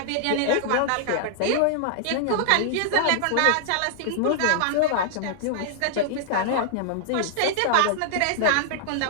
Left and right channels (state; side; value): different; both; correlation -0.01